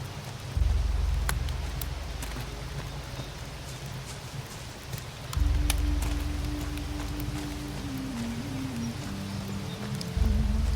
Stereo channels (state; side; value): identical; both; correlation 1.00